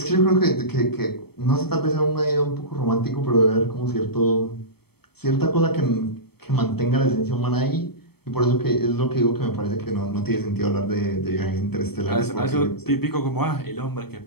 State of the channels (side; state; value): right; late; 0.96 ms